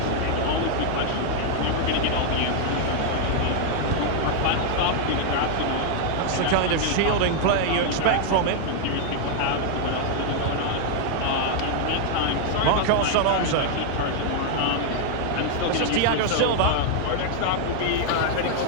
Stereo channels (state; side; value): different; both; correlation 0.00